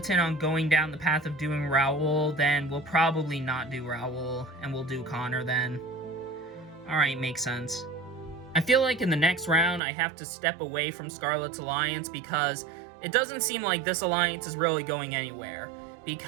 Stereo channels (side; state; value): left; drops out; at 9.8 s